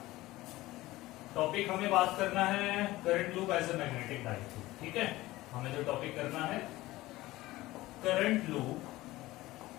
टॉपिक हमें बात करना है current loop as a magnetic dipole. ठीक है, हमें जो टॉपिक करना है current loop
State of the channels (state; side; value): quieter; right; 18.0 dB